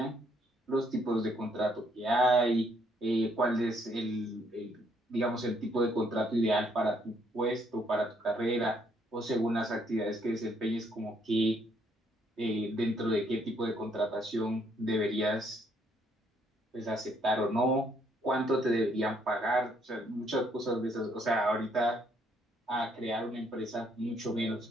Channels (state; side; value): normal; both; correlation 0.69